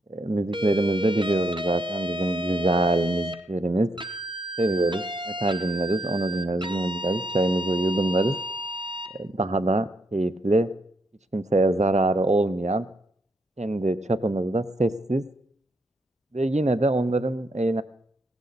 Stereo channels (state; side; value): normal; both; correlation 0.76